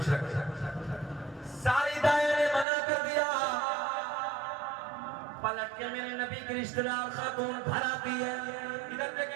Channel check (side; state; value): left; drops out; at 2.7 s